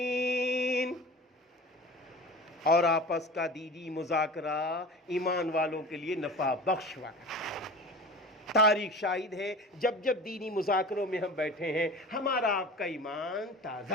اور آپس کا دینی مذاکرہ ایمان والوں کے لیے نفع بخش والا، تاریخ شاہد ہے، جب جب دینی مذاکروں میں ہم بیٹھے ہیں ہمارا آپ کا ایمان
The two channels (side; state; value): both; normal; correlation 0.36